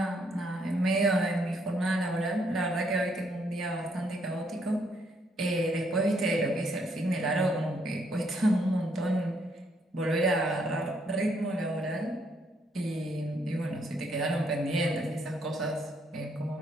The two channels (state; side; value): normal; both; correlation 0.72